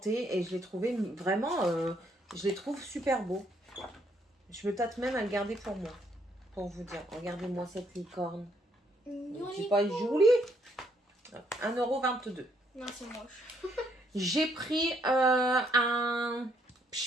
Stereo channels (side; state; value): both; normal; correlation 0.71